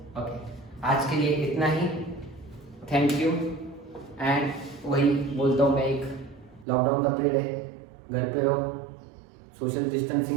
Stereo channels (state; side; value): drops out; left; at 6.7 s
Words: ओके आज के लिए इतना ही। Thank you. एंड वही बोलता हूँ मैं, एक लॉकडाउन का पीरियड है, घर पे रहो, सोशल